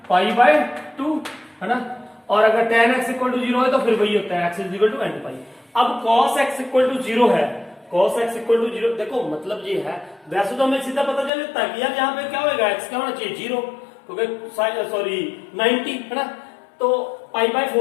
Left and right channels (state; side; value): drops out; right; at 11.3 s